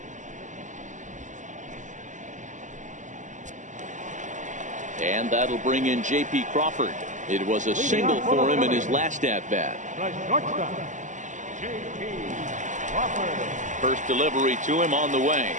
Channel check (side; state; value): left; late; 0.36 ms